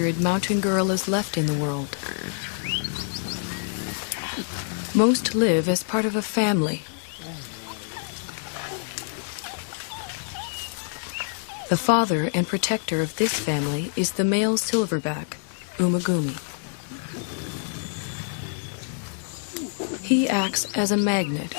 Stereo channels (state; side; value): silent; right; digital silence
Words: mountain gorillas left in the world. Most live as part of a family. The father and protector of this family is the male silverback, Umagumi. He acts as a magnet